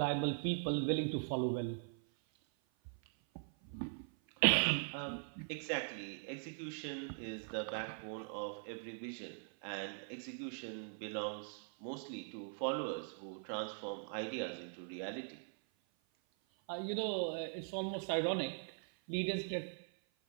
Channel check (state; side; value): silent; left; 50 dB below the other